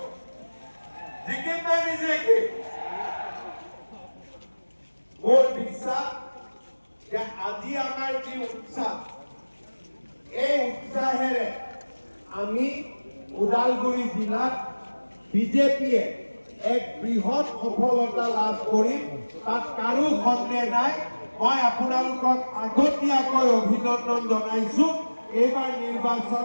জিকিম নে নিজিকিম মোৰ বিশ্বাস যে আজি আমাৰ যি উৎসাহ এই উৎসাহেৰে আমি ওদালগুৰি জিলাত বিজেপিয়ে এক বৃহৎ সফলতা লাভ কৰিম তাত কাৰো সন্দেহ নাই মই আপোনালোকক আগতীয়াকৈ অভিনন্দন জনাইছো এইবাৰ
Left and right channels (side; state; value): both; inverted; correlation -1.00